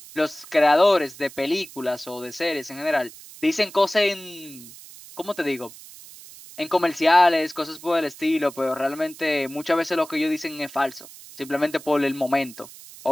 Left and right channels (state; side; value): noise; right; hiss, 18 dB below the sound